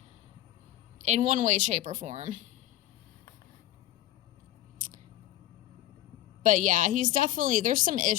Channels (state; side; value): quieter; right; 14.3 dB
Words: in one way, shape, or form. But yeah, he's definitely, there's some